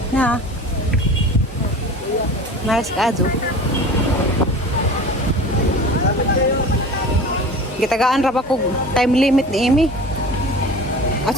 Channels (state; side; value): normal; both; correlation 0.37